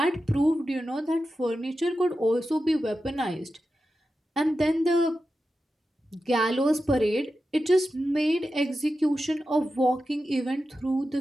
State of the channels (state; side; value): normal; both; correlation 0.91